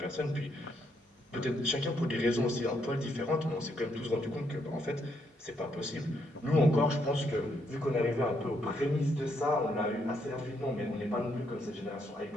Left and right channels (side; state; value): both; normal; correlation 0.75